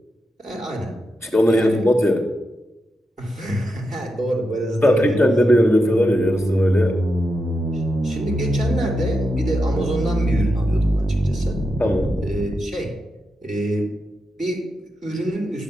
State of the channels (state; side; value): normal; both; correlation 0.86